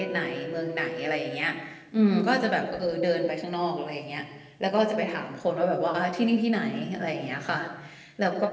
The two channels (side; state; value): both; identical; correlation 1.00